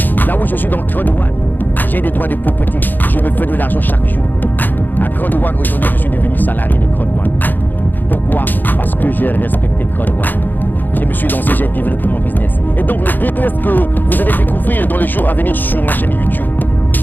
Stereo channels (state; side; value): late; right; 0.088 ms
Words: Là où je suis dans Crowd One, j'ai des droits de propriété, je me fais de l'argent chaque jour. À Crowd One, aujourd'hui, je suis devenu salarié de Crowd One. Pourquoi? Parce que j'ai respecté Crowd One. Je me suis lancé, j'ai développé mon business. Et donc le business que vous allez découvrir dans les jours à venir sur ma chaîne YouTube,